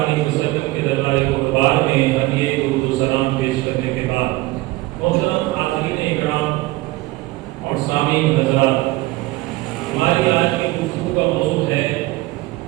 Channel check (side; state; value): left; quieter; 19.7 dB